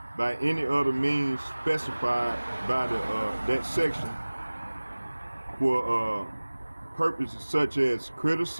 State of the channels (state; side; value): inverted; both; correlation -1.00